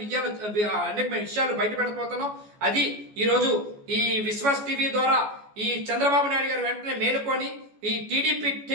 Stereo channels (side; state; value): left; late; 14 ms